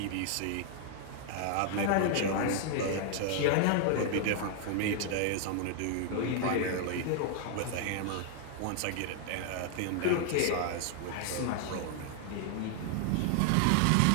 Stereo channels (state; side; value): different; both; correlation 0.00